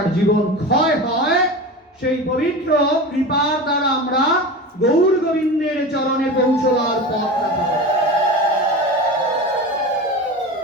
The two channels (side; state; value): both; normal; correlation 0.29